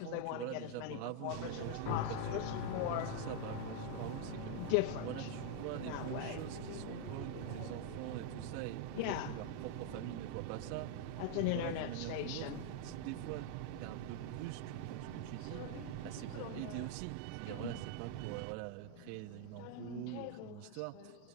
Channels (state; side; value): different; both; correlation 0.00